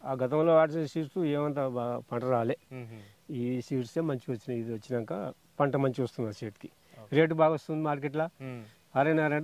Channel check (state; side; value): identical; both; correlation 1.00